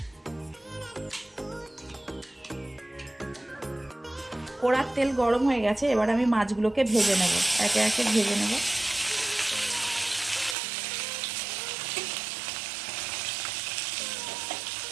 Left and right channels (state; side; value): drops out; left; at 10.6 s